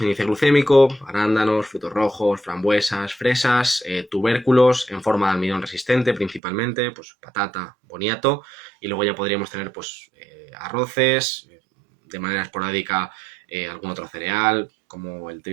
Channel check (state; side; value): drops out; left; at 6.4 s